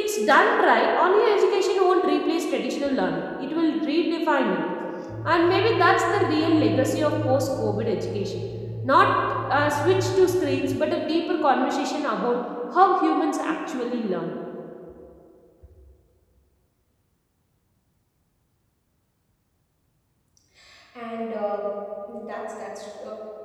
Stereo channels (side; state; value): both; identical; correlation 1.00